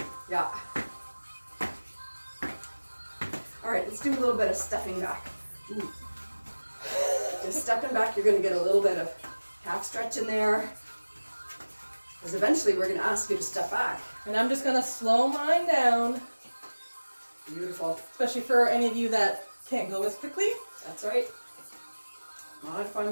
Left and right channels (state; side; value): inverted; both; correlation -1.00